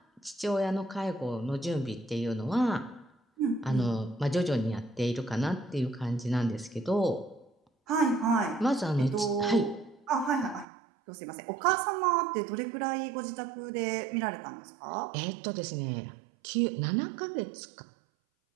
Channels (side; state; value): left; drops out; at 10.7 s